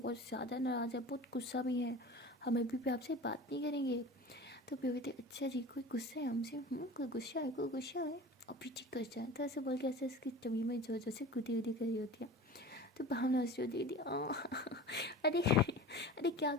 ज़्यादा नाराज़ है, बहुत गुस्सा भी है, हम अभी भी आपसे बात नहीं करेंगे। तो पीहू कहती अच्छा जी कोई गुस्सा है हमसे? कोई गुस्सा है, कोई गुस्सा है, अभी ठीक कर जाए। तो ऐसे बोल के ऐसे इसकी तभी में जोर जोर से गुदी गुदी करी होती है। तो भावना हंस रही होती है अरे अरे क्या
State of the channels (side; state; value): both; normal; correlation 0.36